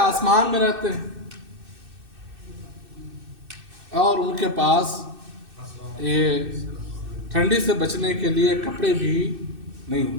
میں رہتے ہیں، اور ان کے پاس یہ ٹھنڈی سے بچنے کے لیے کپڑے بھی نہیں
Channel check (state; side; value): late; left; 2.6 ms